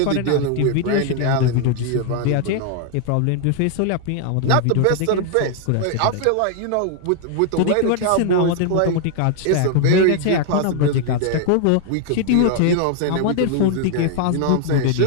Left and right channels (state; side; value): different; both; correlation 0.00